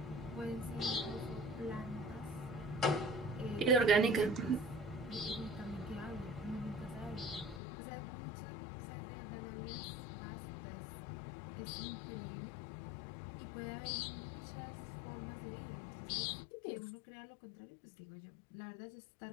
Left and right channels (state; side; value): drops out; right; at 7.6 s